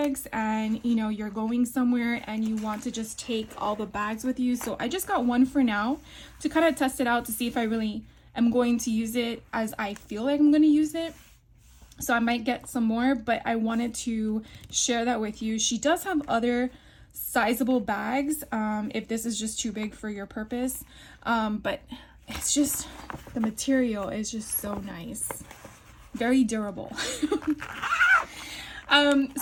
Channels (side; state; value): both; identical; correlation 1.00